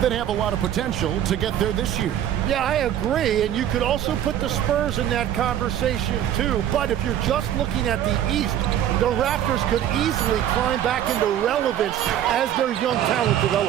have a lot of potential to get there this year. Yeah, I agree, and you could also put the Spurs in that conversation too. But if you're just looking at the East, the Raptors could easily climb back into relevance as their young talent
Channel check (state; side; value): quieter; left; 10.9 dB